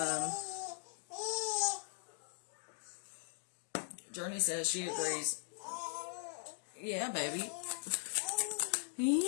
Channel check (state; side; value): silent; right; digital silence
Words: Journey says she agrees. Yeah, baby.